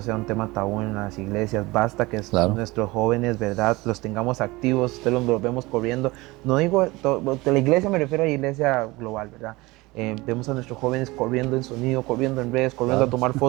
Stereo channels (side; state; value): left; quieter; 21.7 dB